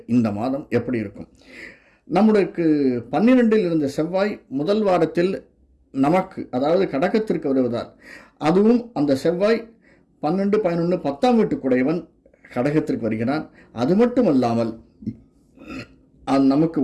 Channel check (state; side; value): identical; both; correlation 1.00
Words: இந்த மாதம் எப்படி இருக்கும்? நம்மளுக்கு 12 இருந்த செவ்வாய் முதல் வாரத்தில் நமக்கு, அதாவது கடகத்திற்கு வருவதால், அதுவும் அந்த செவ்வாய் 12, 11, 10ஆம் வீட்டுக்குடையவன் கடகத்திற்கு வருகிறான். அது மட்டுமல்லாமல் நமக்கு